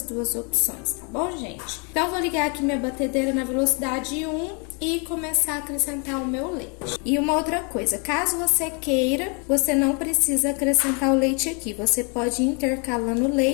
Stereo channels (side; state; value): right; quieter; 35.1 dB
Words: 2 opções, tá bom, gente? Então, vou ligar aqui minha batedeira na velocidade 1 e começar a acrescentar o meu leite. E uma outra coisa, caso você queira, você não precisa acrescentar o leite aqui. Você pode ir intercalando o